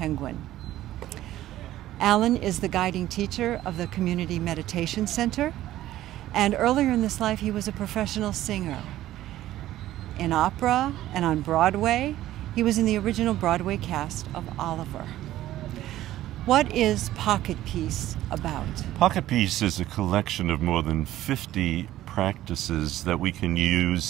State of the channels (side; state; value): left; quieter; 14.2 dB